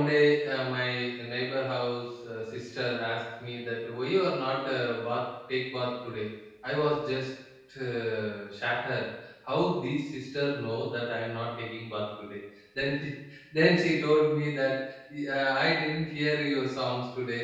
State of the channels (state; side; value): identical; both; correlation 1.00